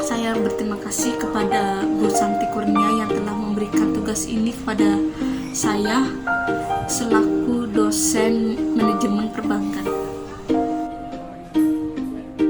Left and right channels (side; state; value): both; identical; correlation 1.00